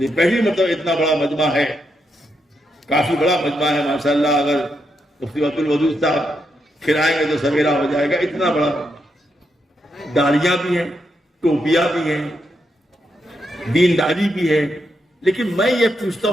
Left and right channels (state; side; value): normal; both; correlation 0.82